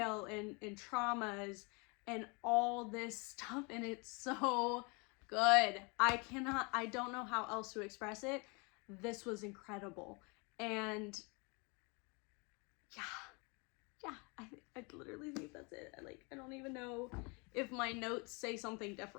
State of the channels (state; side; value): quieter; right; 30.6 dB